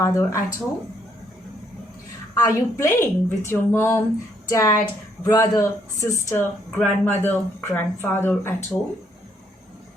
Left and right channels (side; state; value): both; normal; correlation 0.70